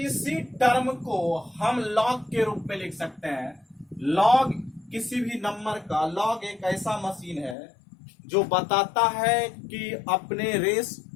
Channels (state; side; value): drops out; right; at 7.6 s